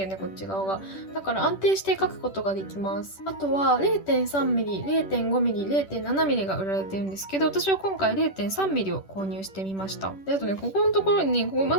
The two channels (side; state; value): right; late; 10 ms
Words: よね、こっち側が。だから安定して書くことができます。あとは 0.3 ミリ、0.5 ミリ、0.7 ミリが売られてるんですけど、私は今回 0.3 ミリを購入してみました。で、あとね、ここのところにね、ここ